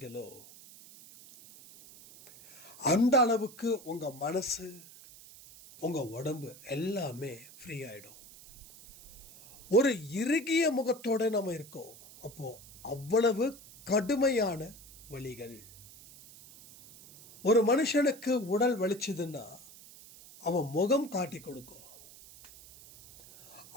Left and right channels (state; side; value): noise; right; hiss, 20 dB below the sound